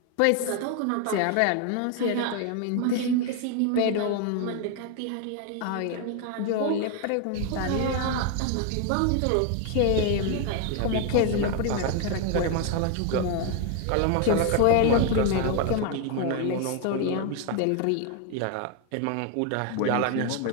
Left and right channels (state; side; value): different; both; correlation 0.01